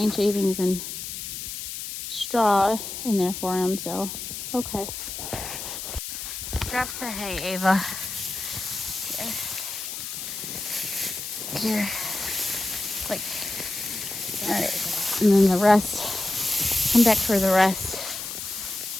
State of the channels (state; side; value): noise; left; hiss, 7 dB below the sound